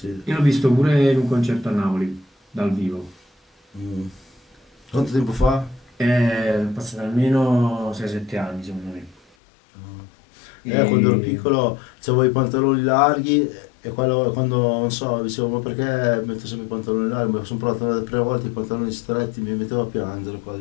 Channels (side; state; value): right; drops out; at 9.2 s